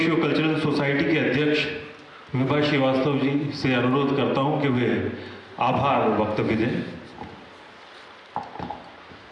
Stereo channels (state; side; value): identical; both; correlation 1.00